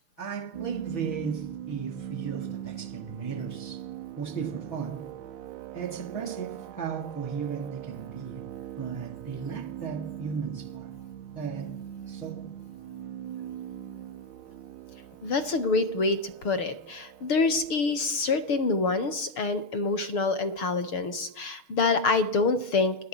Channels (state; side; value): late; right; 6.5 ms